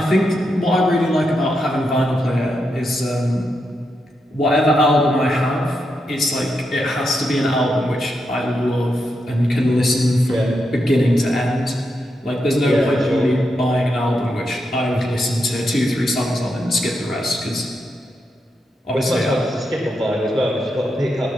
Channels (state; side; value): normal; both; correlation 0.84